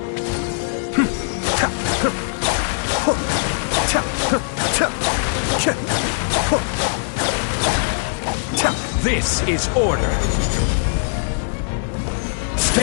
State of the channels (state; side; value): silent; right; digital silence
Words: This is order.